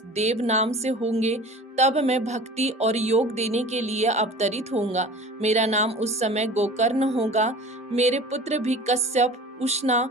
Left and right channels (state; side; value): normal; both; correlation 0.40